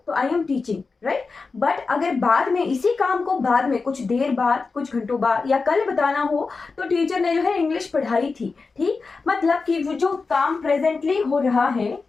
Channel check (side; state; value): right; quieter; 4.3 dB